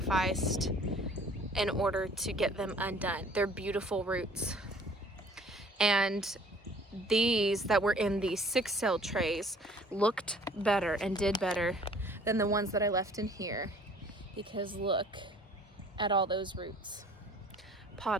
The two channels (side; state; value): both; normal; correlation 0.53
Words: in order to get them undone. They're beautiful roots. And these that were in these 6-cell trays looked better and did better than the ones that I left in here, because look at all those roots.